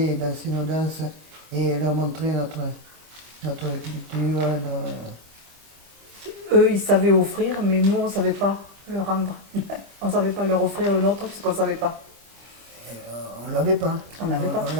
danser nos danses, et leur montrer notre culture. Eux, ils savaient offrir, mais nous, on ne savait pas leur rendre. On ne savait pas leur offrir le nôtre, puisqu'on ne savait pas. On ne l'avait pas. On l'avait pas. On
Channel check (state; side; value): late; left; 25 ms